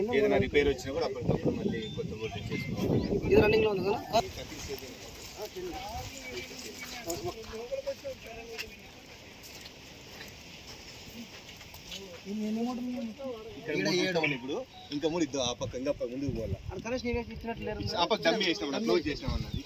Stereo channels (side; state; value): both; identical; correlation 1.00